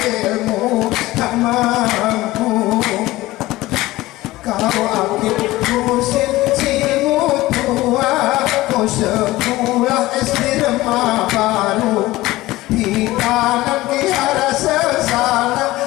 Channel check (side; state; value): right; quieter; 18.0 dB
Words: tak mampu Kau akib kusin simu tua Kau sekolah SD Remah Baru Hitanan kihara sesana